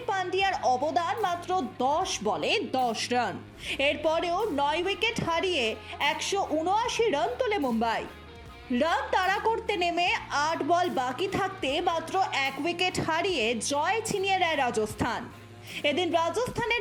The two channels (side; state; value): both; identical; correlation 1.00